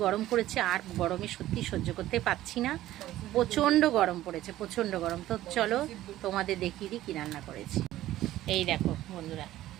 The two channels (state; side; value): quieter; left; 14.5 dB